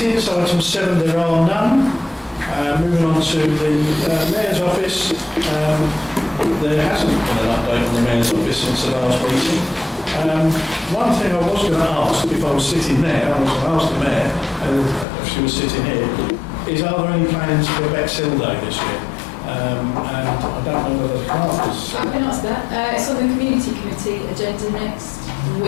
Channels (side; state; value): right; drops out; at 15.1 s